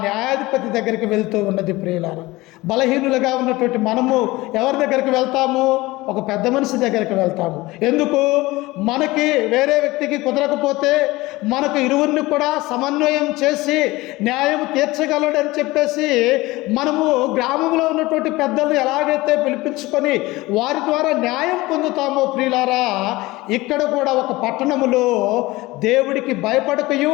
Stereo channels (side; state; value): right; quieter; 20.2 dB